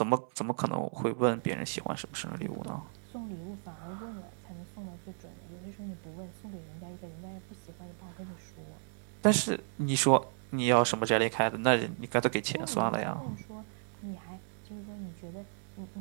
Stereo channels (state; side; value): silent; left; 55 dB below the other